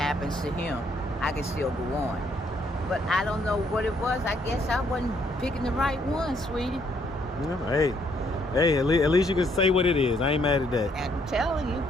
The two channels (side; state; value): both; normal; correlation 0.69